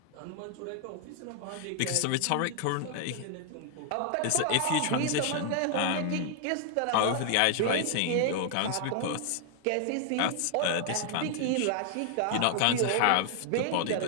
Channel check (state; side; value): different; both; correlation 0.00